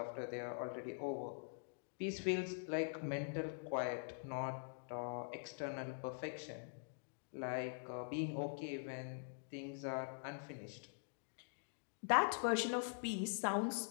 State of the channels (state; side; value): silent; right; digital silence